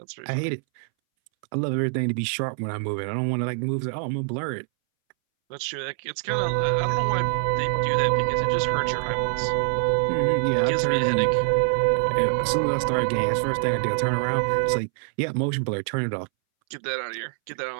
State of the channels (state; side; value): silent; left; 62 dB below the other